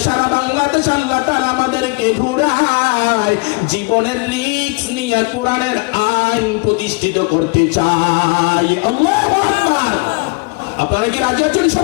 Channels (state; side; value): quieter; right; 28.8 dB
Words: সারা বাংলাদেশ আল্লাহ তাআলা আমাদেরকে ঘুরায় জীবনের রিস্ক নিয়ে কোরআনের আইন প্রতিষ্ঠিত করতে চাই। আল্লাহু আকবার। আপনারা কি রাজি আছেন